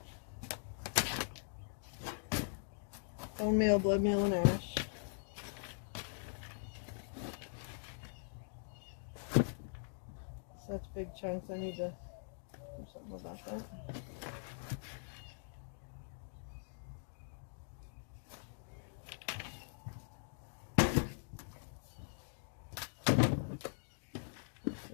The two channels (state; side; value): silent; right; digital silence